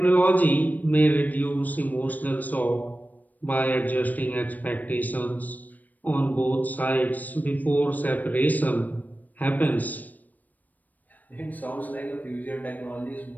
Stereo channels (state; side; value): late; right; 0.081 ms